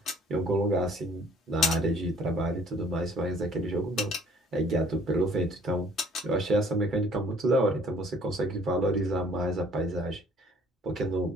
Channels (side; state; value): both; normal; correlation 0.57